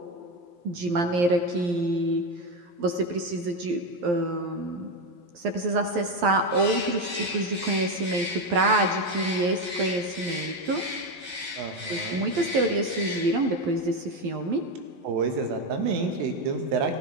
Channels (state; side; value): late; left; 11 ms